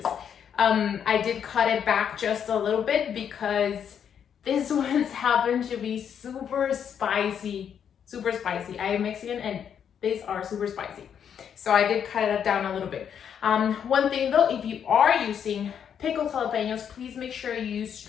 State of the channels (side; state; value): right; quieter; 8.2 dB